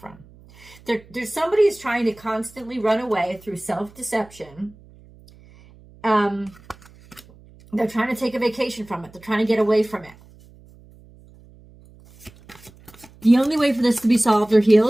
There's somebody who's trying to constantly run away through self-deception. They're trying to take a vacation from it. They're trying to get away from it. The only way for this to be solved or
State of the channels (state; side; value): noise; right; hum, 25 dB below the sound